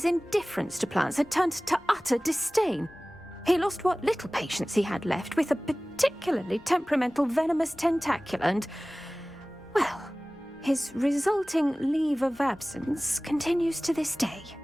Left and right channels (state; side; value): normal; both; correlation 0.98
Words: indifference to plants had turned to utter disdain. He lost what little patience he had left with a particularly temperamental venomous tentacula and, well, his resulting leave of absence continues to this day.